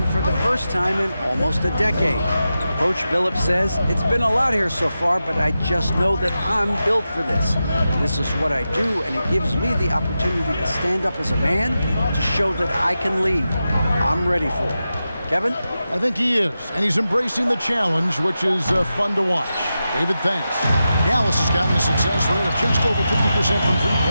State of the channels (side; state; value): both; inverted; correlation -0.91